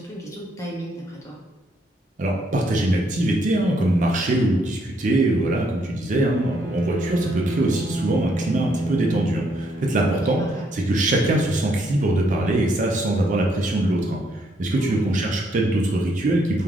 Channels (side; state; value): both; normal; correlation 0.72